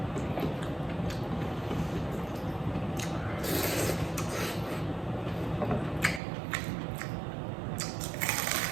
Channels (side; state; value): left; drops out; at 6.2 s